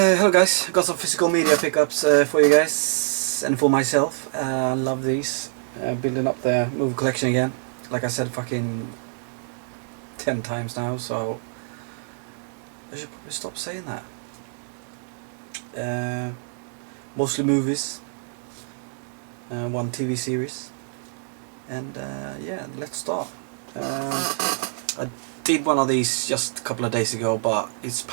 hello guys, got some physical media pickups for you guys and for myself. I love these. Building up the movie collection again. Like I said fucking 10 times now, so I should probably stop saying that. Mostly movies, one TV series, and yeah, let's start. I did one of these just a couple of days ago, but it's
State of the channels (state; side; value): silent; left; digital silence